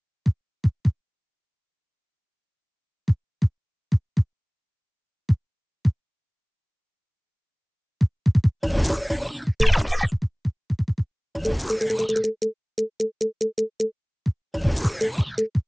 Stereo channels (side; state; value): both; identical; correlation 1.00